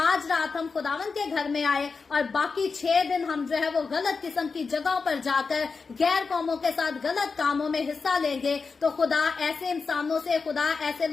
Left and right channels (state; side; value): quieter; right; 4.8 dB